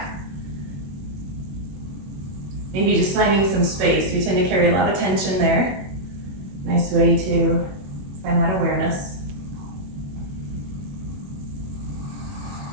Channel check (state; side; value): late; left; 21 ms